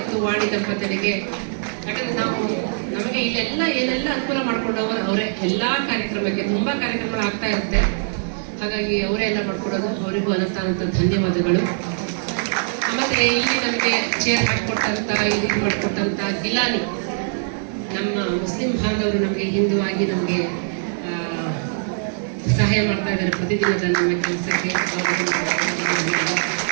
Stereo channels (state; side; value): silent; left; digital silence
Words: ವಾಣಿ ದಂಪತಿಗಳಿಗೆ, ಯಾಕಂದ್ರೆ ನಮಗೆ ಇಲ್ಲೆಲ್ಲ ಏನೆಲ್ಲ ಅನುಕೂಲ ಮಾಡ್ಕೊಂಡವರು ಅವರೇ. ಎಲ್ಲಾ ಕಾರ್ಯಕ್ರಮಕ್ಕೆ ತುಂಬಾ ಕಾರ್ಯಕ್ರಮಗಳು ಆಗ್ತಾ ಇರುತ್ತೆ, ಹಾಗಾಗಿ ಅವರೇ ಎಲ್ಲ ಮಾಡ್ಕೊಡೋದು. ಅವರಿಗೂ ಅನಂತ ಧನ್ಯವಾದಗಳು. ಮತ್ತೆ ಇಲ್ಲಿ ನಮಗೆ ಚೇರ್ ಹಾಕಿಕೊಟ್ಟಂತ ಇದು ಮಾಡಿಕೊಟ್ಟಂತ ಗಿಲಾನಿ, ನಮ್ಮ ಮುಸ್ಲಿಂ ಬಾಂಧವರು ನಮಗೆ ಹಿಂದುವಾಗಿ ನಮಗೆ ಸಹಾಯ ಮಾಡ್ತಾ ಇದ್ದಾರೆ ಪ್ರತಿದಿನದ ನಮ್ಮ ಕೆಲಸಕ್ಕೆ.